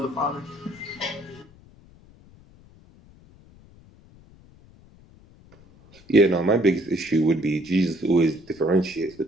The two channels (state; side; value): noise; left; rumble, 25 dB below the sound